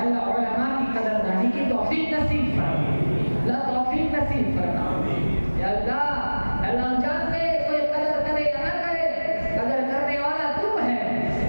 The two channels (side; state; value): both; inverted; correlation -1.00